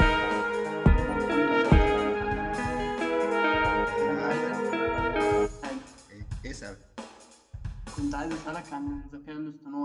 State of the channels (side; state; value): both; identical; correlation 1.00